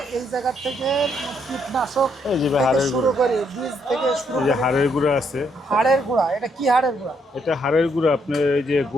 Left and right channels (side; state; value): both; normal; correlation 0.73